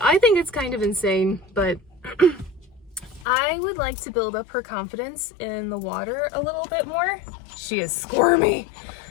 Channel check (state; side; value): drops out; right; at 3.2 s